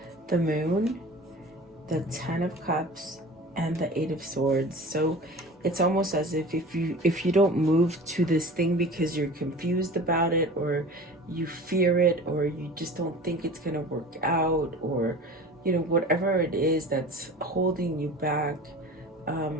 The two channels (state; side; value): normal; both; correlation 0.38